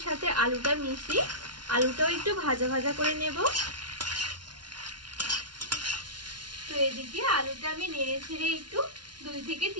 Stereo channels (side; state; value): left; late; 0.70 ms